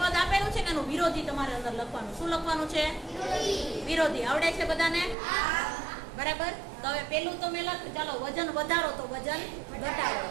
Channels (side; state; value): left; drops out; at 5.2 s